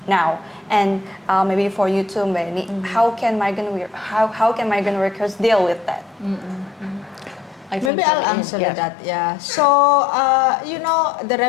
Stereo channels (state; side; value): drops out; right; at 7.9 s